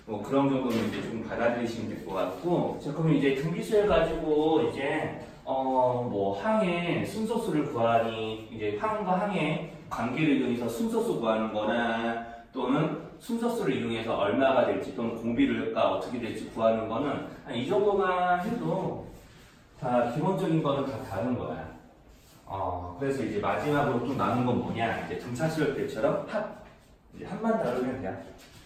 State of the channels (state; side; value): identical; both; correlation 1.00